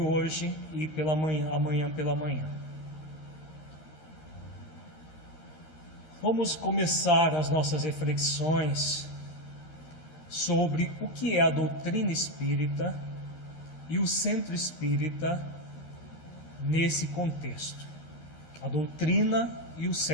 e amanhã pela manhã. Vamos começar as nossas reflexões sobre o que é a doutrina espírita e o centro espírita nesse contexto. A doutrina e o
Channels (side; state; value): right; late; 13 ms